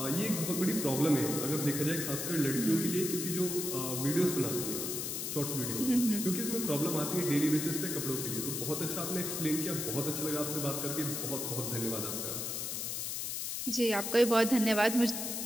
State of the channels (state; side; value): noise; left; hiss, 3 dB below the sound